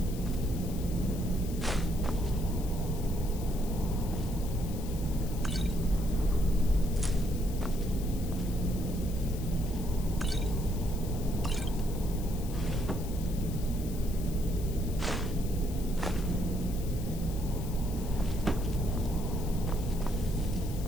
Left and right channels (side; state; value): left; noise; hiss, 15 dB below the sound